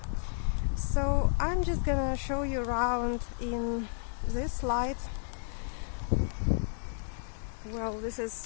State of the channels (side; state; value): right; silent; digital silence